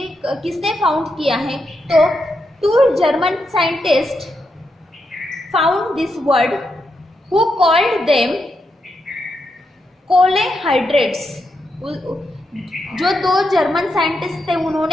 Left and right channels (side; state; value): both; normal; correlation 0.84